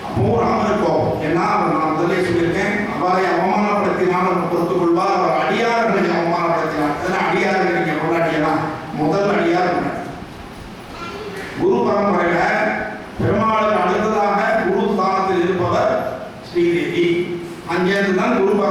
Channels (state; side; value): identical; both; correlation 1.00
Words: அப்போ ராமனுக்கு கோபம். ஏன்னா நான் முதலே சொல்லியிருக்கேன், அவரை அவமானப்படுத்தினாலும் பொறுத்துக் கொள்வார், அவர் அடியார்களை அவமானப்படுத்தினார். அதெல்லாம் அடியார்கள் நீங்க கொண்டாடியெல்லாம் முதல் அடியார் குரு பரம்பரையில பெருமாளுக்கு அடுத்ததாக குரு ஸ்தானத்தில் இருப்பவர் ஸ்ரீதேவி. அங்கேருந்து தான் குரு